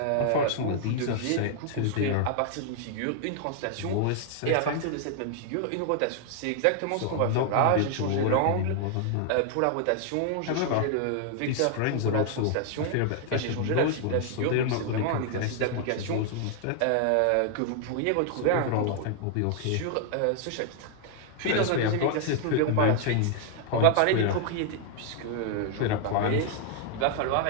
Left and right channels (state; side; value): different; both; correlation 0.00